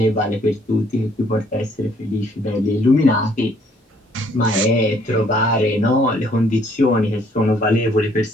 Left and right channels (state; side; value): normal; both; correlation 0.64